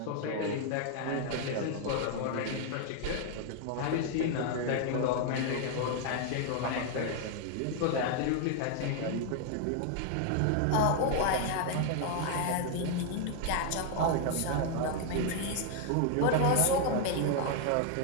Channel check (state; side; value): different; both; correlation 0.00